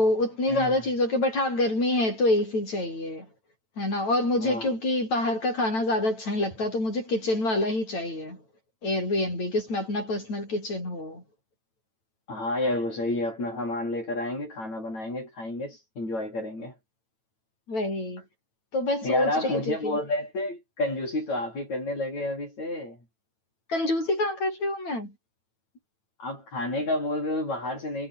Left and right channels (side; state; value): right; late; 9.0 ms